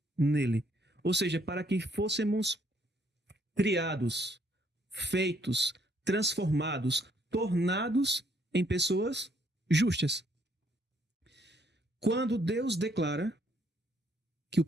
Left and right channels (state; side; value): normal; both; correlation 0.68